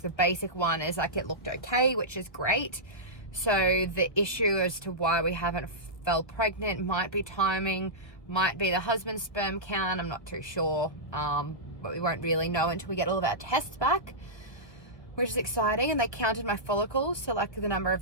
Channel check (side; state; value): right; late; 1.1 ms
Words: the basic one is like it looked okay, which is great. So the issue as to why we haven't fell pregnant might be timing, might be the husband's sperm count. I'm not too sure, but we won't really know until we get all of our tests back, which is exciting. And they counted my follicles, so like the number